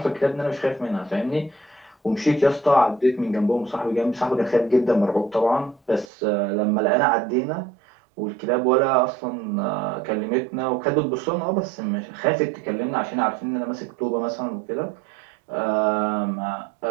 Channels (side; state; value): left; drops out; at 6.1 s